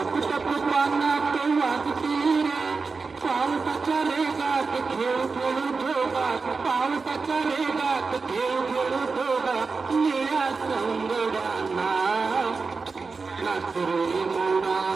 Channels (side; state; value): left; quieter; 4.5 dB